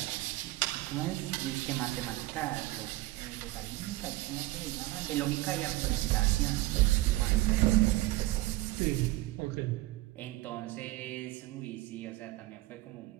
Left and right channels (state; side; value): quieter; left; 18.5 dB